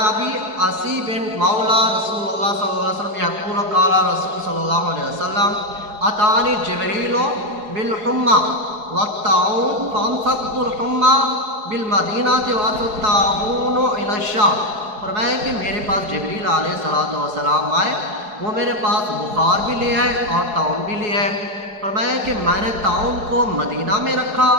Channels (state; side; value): late; left; 4.8 ms